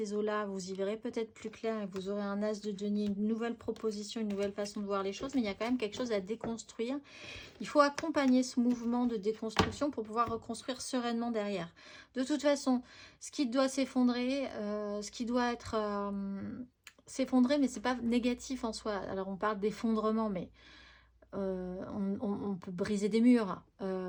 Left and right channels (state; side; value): identical; both; correlation 1.00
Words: eaux-là, vous y verrez peut-être plus clair et vous aurez un as de denier, une nouvelle proposition, une nouvelle façon de voir les choses. Mais il y a quand même quelque chose à déconstruire. Il faut accompagner ce mouvement de déconstruction pour pouvoir reconstruire sereinement derrière. De toute façon, ce qui doit s'effondrer, ce qui doit être s'effondrer, mais c'est pas négatif en soi. Alors on parle d'effondrement, mais on peut briser des murs